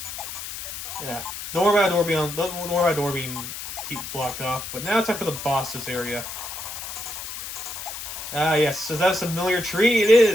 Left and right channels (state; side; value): noise; left; hiss, 8 dB below the sound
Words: Yeah. Don't worry about a door being blocked off. But now it's time for the boss's area. Ah, yes. Is that a familiar tree? It